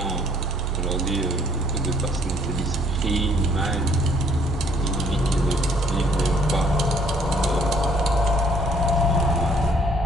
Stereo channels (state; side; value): normal; both; correlation 0.62